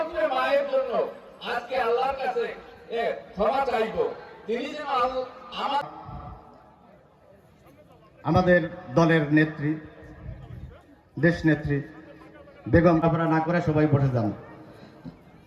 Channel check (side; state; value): both; identical; correlation 1.00